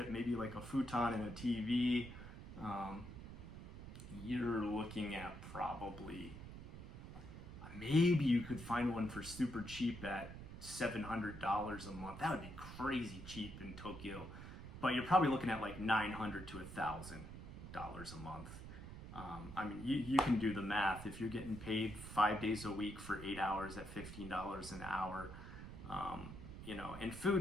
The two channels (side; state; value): right; noise; rumble, 11 dB below the sound